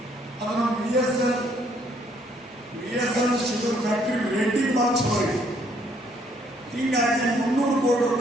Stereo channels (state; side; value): normal; both; correlation 0.66